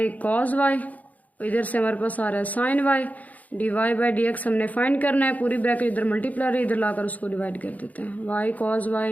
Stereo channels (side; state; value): right; late; 0.076 ms